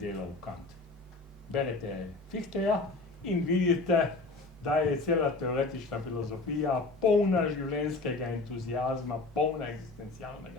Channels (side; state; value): right; quieter; 3.4 dB